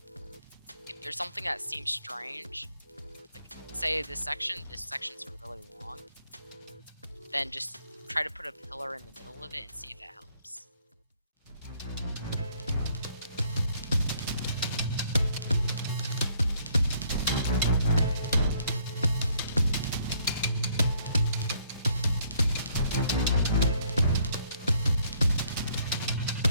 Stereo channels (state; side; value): inverted; both; correlation -0.66